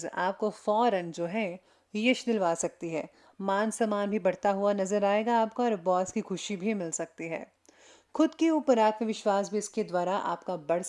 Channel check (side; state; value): both; identical; correlation 1.00